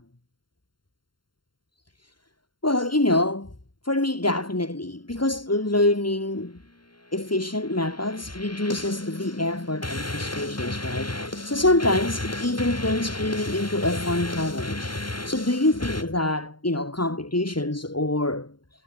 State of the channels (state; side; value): late; right; 0.72 ms